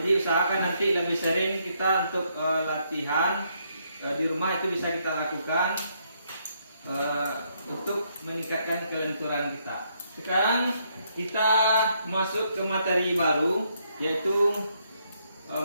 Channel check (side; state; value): both; inverted; correlation -0.74